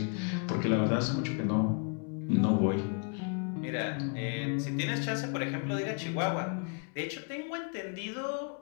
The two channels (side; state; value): right; quieter; 38.8 dB